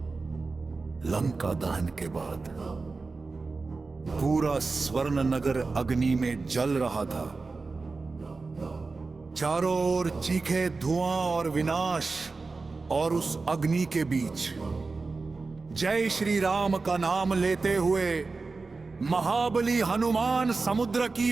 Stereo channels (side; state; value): left; quieter; 4.0 dB